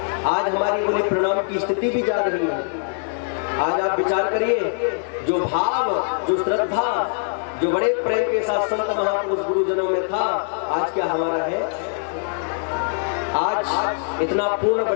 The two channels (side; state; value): right; silent; digital silence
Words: आज हमारी बोले प्रणाम की स्थिति भी जा रही है। आज आप विचार करिए, जो भाव, जो श्रद्धा, जो बड़े प्रेम के साथ संत महापुरुष गुरुजनों में था, आज क्या हमारा है? आज इतना पूर्ण